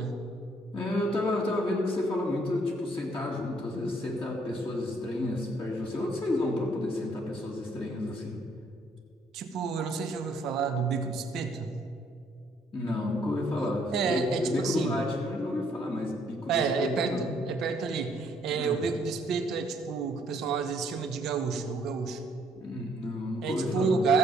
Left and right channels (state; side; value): normal; both; correlation 0.66